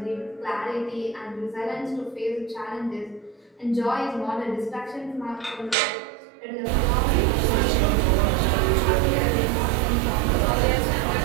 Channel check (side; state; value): left; drops out; at 5.8 s